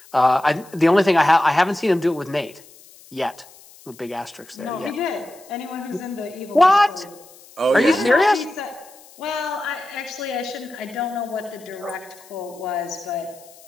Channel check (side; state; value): left; noise; hiss, 24 dB below the sound